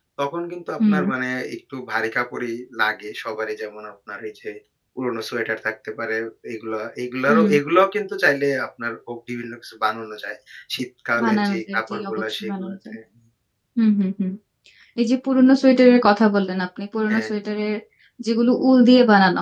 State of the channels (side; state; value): both; identical; correlation 1.00